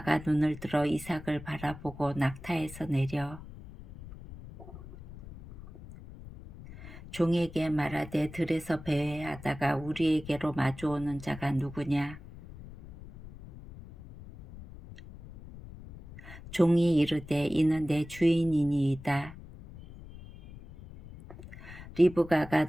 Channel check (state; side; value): noise; left; rumble, 16 dB below the sound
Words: 눈을 들어 이삭을 바라보고 낙타에서 내려 종에게 말하되 들에서 배회하다가 우리에게로 마주오는 자가 누구냐? 종이 이르되 이는 내 주인이니이다. 리브가가